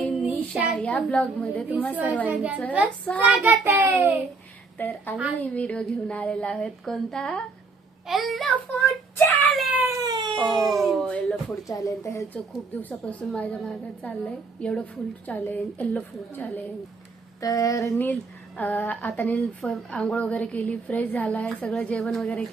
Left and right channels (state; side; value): quieter; left; 4.1 dB